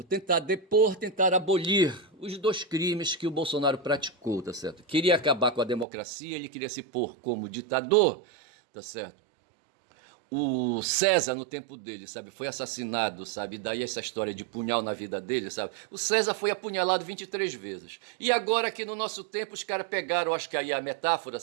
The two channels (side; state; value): left; drops out; at 5.9 s